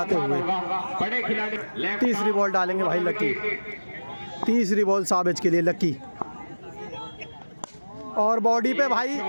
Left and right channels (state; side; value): inverted; both; correlation -1.00